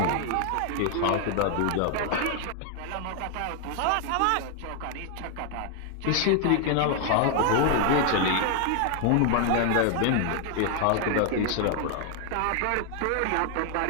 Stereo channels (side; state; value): both; different; correlation 0.00